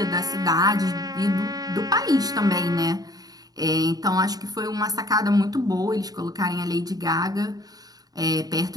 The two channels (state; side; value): late; left; 0.18 ms